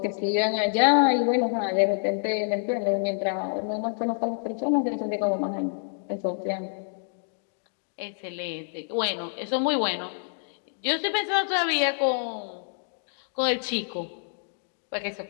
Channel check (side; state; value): right; silent; digital silence